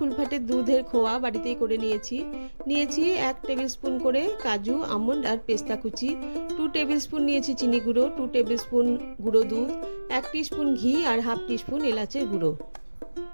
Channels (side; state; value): both; inverted; correlation -1.00